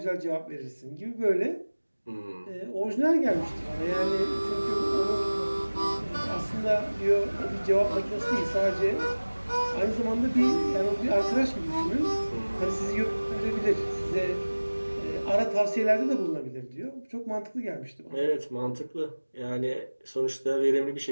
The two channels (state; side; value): inverted; both; correlation -1.00